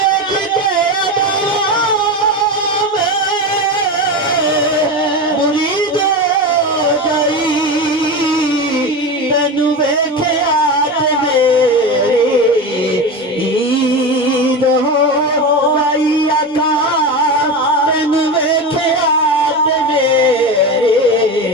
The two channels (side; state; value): both; normal; correlation 0.22